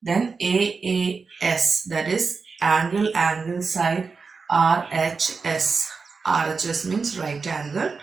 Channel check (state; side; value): quieter; left; 4.8 dB